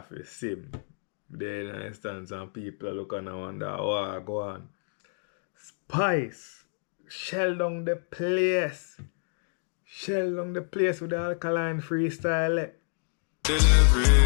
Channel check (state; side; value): silent; right; digital silence